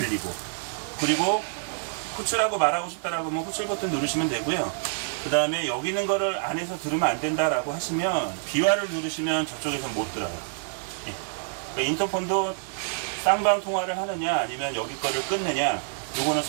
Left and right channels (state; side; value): silent; left; digital silence